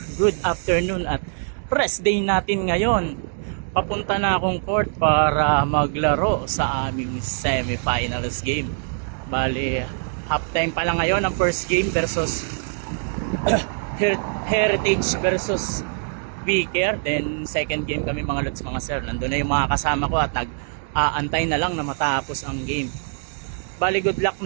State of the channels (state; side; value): silent; left; 63 dB below the other